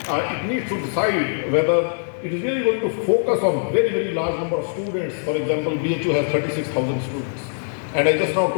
it needs to decide whether it is really going to focus on very, very large number of students. For example, BHU has 36,000 students. And I just now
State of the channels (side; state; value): right; silent; 64 dB below the other